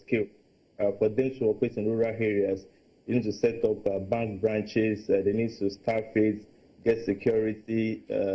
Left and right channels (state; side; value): identical; both; correlation 1.00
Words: for them to operate in rural areas. You need to set up bank branches, they need to staff it, get security,